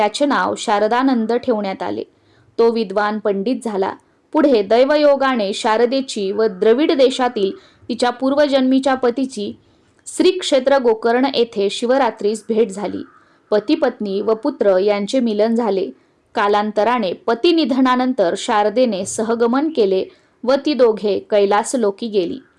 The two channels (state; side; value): identical; both; correlation 1.00